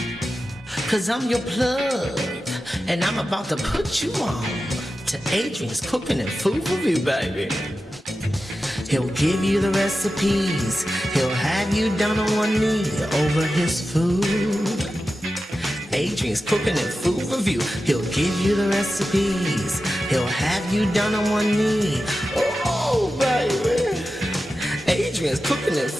Cause I'm your plug, and I'm about to put you on to Adrian's Cooking and Food Review, baby. He'll give you the recipes. He'll have you down on one knee over his food. Adrian's Cooking and Food Review. He'll give you the recipes. He'll have you down on one knee. Oh, baby. Adrian's Cooking and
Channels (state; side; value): normal; both; correlation 0.92